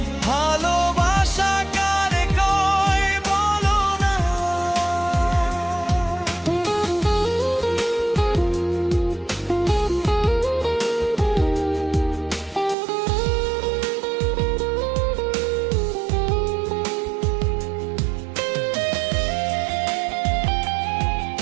ভালোবাসা কারে কয় বলো না।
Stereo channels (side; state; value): left; drops out; at 12.8 s